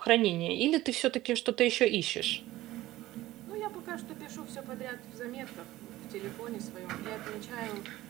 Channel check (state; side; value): quieter; left; 16.2 dB